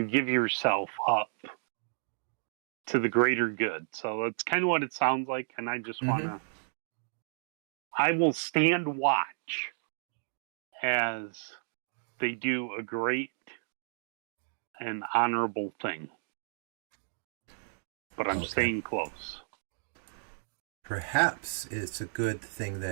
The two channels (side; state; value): left; silent; digital silence